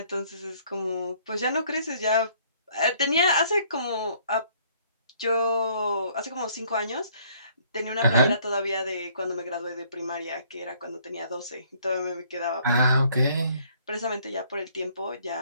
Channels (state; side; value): inverted; both; correlation -0.62